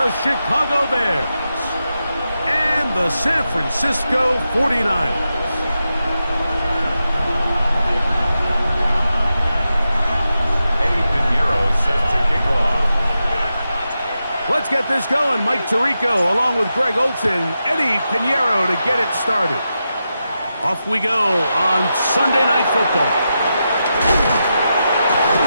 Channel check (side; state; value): both; inverted; correlation -0.89